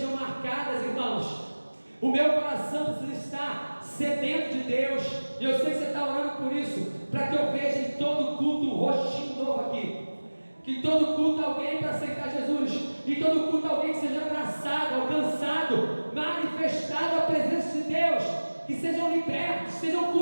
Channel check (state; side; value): inverted; both; correlation -1.00